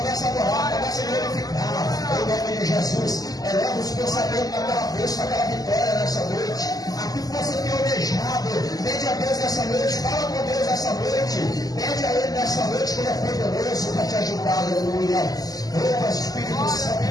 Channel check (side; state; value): right; late; 0.18 ms